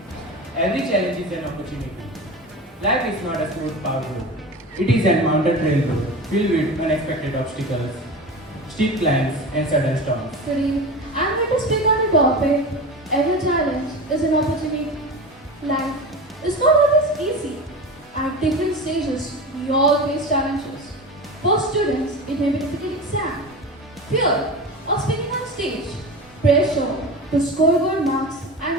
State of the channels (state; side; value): normal; both; correlation 0.29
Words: Every challenge is an opportunity. Life is not a smooth path road. It is a mountain trail road filled with unexpected obstacles, steep climbs, and sudden storms. Today, I'm going to speak on a topic. Every challenge is an opportunity. Life is not always easy. At different stages, we all face challenges. For students, it may be difficult exam, fear of speaking on stage, pressure to score good marks